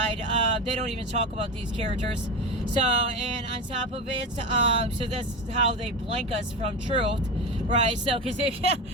they don't even talk about these characters. So, and on top of it, so that's how they blank us from truth, right? So, because if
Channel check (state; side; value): normal; both; correlation 0.22